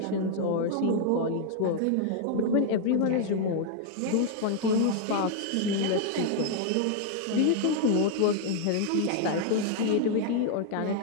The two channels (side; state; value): both; different; correlation 0.00